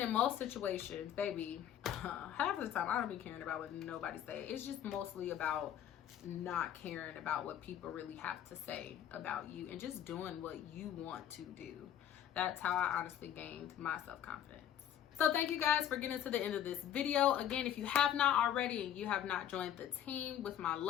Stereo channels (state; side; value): quieter; right; 10.5 dB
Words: in most situations, baby, half of the time I don't be caring about what nobody say. It's just mostly about not caring about what people really have to say about you and just doing what you want to do. That's how I honestly gained my self-confidence. So thank you guys for getting to the end of this video. Again, if you have not already and you have not joined the team with my